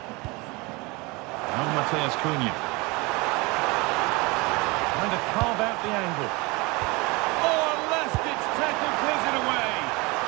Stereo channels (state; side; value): quieter; left; 25.6 dB